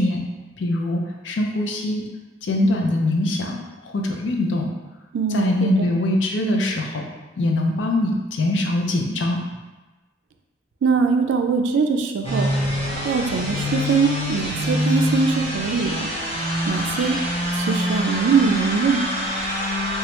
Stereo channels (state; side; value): normal; both; correlation 0.58